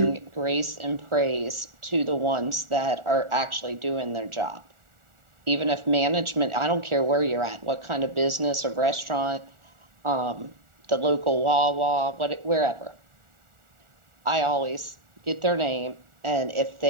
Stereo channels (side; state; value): left; late; 1.4 ms